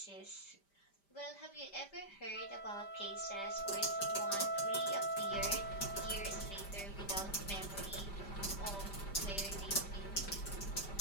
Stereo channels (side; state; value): right; late; 5.1 ms